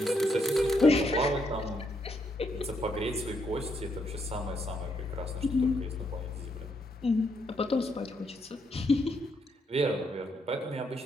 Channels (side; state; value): both; normal; correlation 0.76